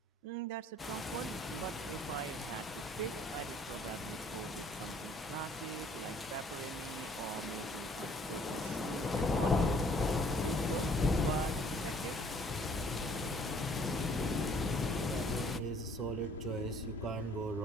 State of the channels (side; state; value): both; normal; correlation 0.59